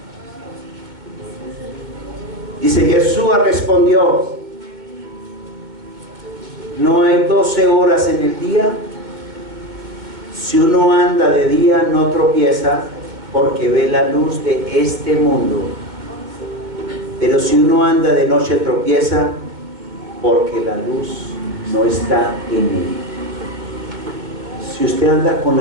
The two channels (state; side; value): late; left; 2.1 ms